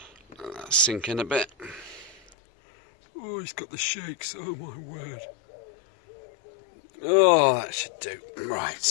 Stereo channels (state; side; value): drops out; right; at 2.4 s